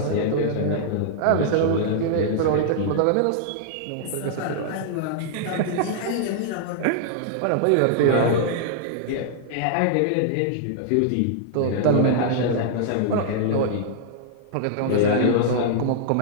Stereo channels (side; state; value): both; different; correlation -0.01